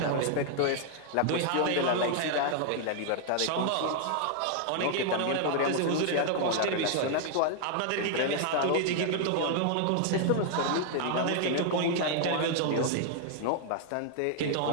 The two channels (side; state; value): both; different; correlation 0.00